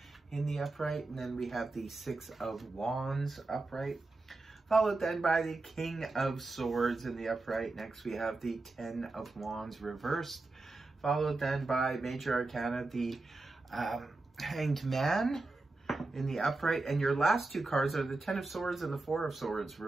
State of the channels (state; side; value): quieter; left; 3.3 dB